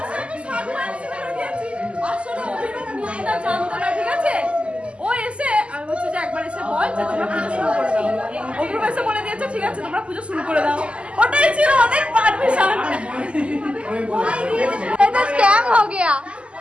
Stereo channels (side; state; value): left; late; 0.055 ms